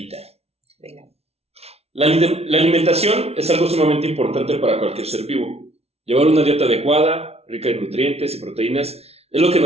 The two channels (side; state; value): left; late; 0.30 ms